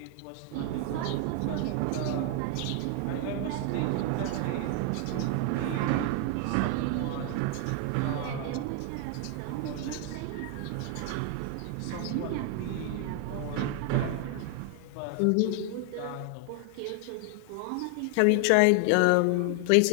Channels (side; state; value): both; different; correlation 0.00